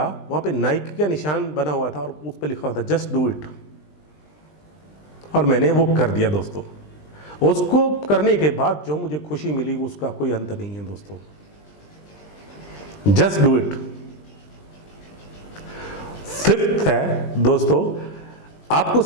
वहाँ पे नाइकी का निशान बना हुआ था और उस पर लिखा हुआ था जस्ट डू इट, और मैंने वो कर दिया दोस्तों। उसको करने के बाद जो मुझे खुशी मिली उसका कोई अंत नहीं है दोस्तों। Just do it. फिफ्थ है दोस्तों, आपको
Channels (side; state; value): right; late; 20 ms